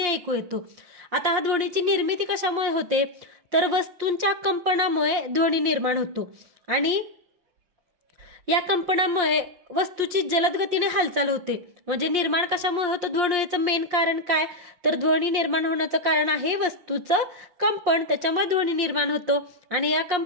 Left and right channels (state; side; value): late; left; 5.7 ms